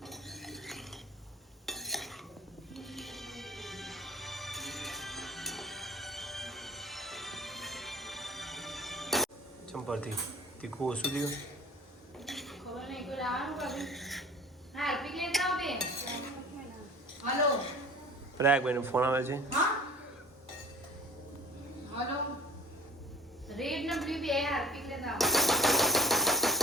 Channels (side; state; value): both; normal; correlation 0.46